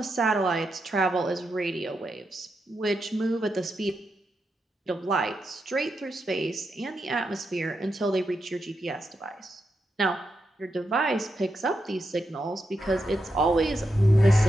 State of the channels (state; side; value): normal; both; correlation 0.85